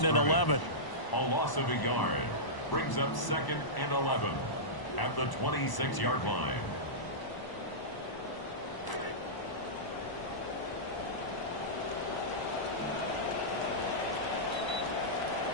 and 11. A loss of a yard brings up 2nd and 11 at the 26-yard line.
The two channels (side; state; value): right; late; 1.0 ms